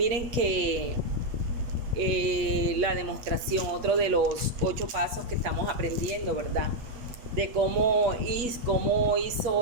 que la demostración, otro de los 8 pasos que estamos aprendiendo, ¿verdad? De cómo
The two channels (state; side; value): late; left; 8.3 ms